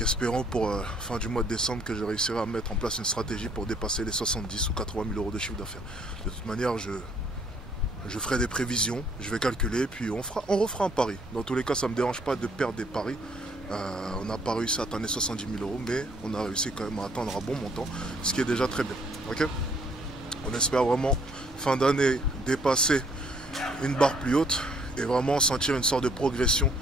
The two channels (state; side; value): normal; both; correlation 0.64